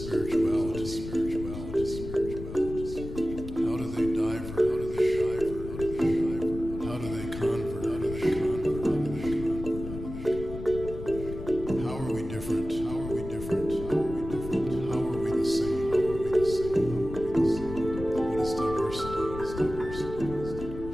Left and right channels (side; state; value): left; noise; rumble, 9 dB below the sound